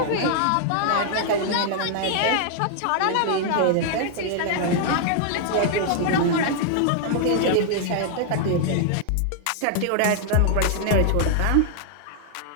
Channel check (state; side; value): different; both; correlation 0.00